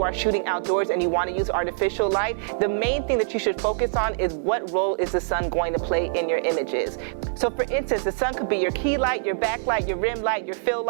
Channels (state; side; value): silent; left; digital silence